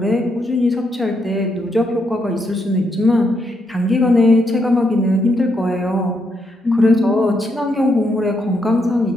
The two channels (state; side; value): normal; both; correlation 0.78